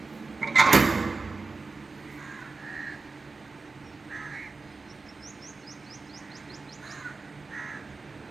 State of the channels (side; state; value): left; quieter; 4.0 dB